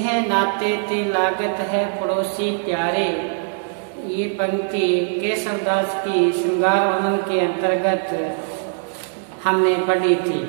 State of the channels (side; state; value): left; silent; digital silence